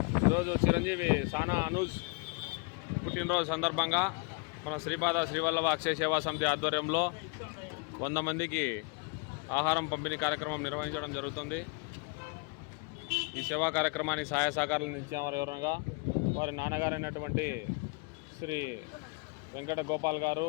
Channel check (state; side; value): quieter; right; 31.7 dB